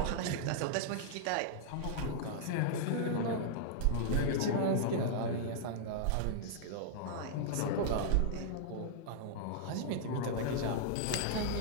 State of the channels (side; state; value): both; different; correlation -0.01